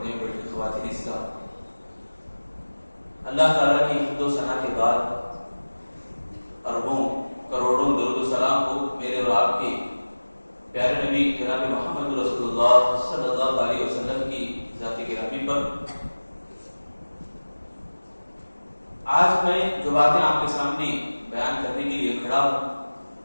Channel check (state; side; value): inverted; both; correlation -1.00